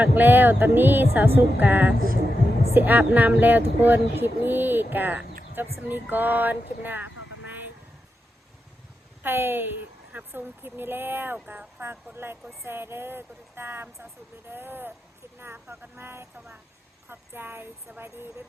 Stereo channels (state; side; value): normal; both; correlation 0.88